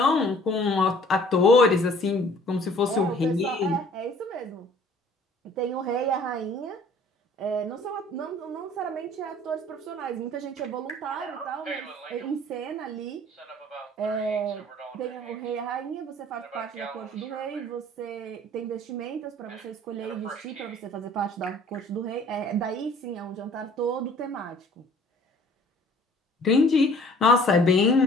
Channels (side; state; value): both; normal; correlation 0.53